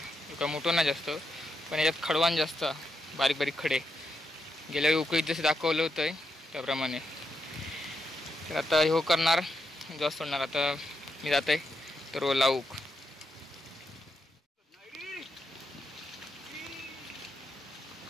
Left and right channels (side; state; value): both; normal; correlation 0.82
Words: एका मोठं नाही जास्त, पण याच्यात खडवान जास्त, बारीक बारीक खडे. गेल्या वेळी उकळीत जसे दाखवलं होतं त्याप्रमाणे. तर आता हे करणार, जास्त सोडणार. आता मी जात आहे तर लावूक.